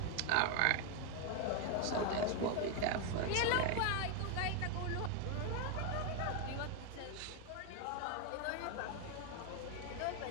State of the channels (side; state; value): both; different; correlation 0.01